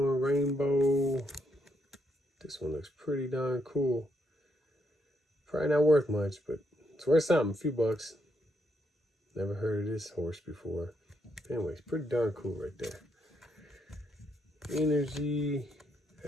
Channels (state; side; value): normal; both; correlation 0.77